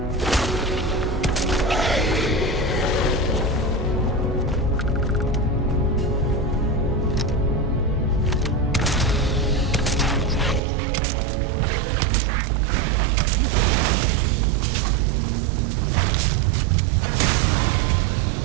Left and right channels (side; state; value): left; drops out; at 10.6 s